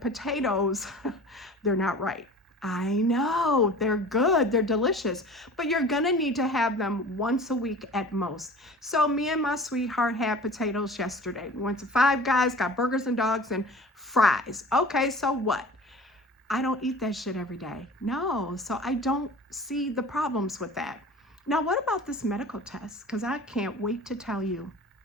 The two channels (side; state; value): both; normal; correlation 0.41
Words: they're not right. I know, they're good, they're delicious, but you're gonna need to have them once a week at most. So me and my sweetheart had potatoes yesterday. We went to Five Guys, got burgers and dogs and fries. Okay, so what? I don't eat that shit every day. No, so I don't see the problems with that. Now, what about this medical test? Because I can't wait to tell you.